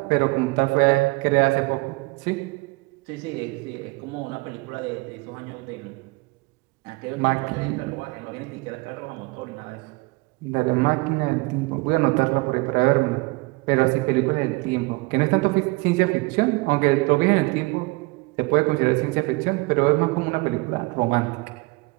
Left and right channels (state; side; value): quieter; left; 25.3 dB